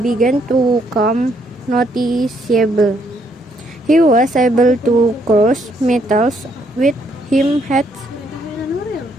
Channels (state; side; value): normal; both; correlation 0.71